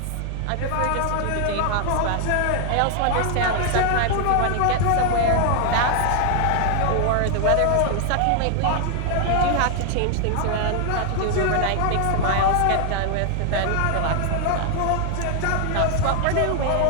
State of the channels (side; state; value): both; different; correlation 0.00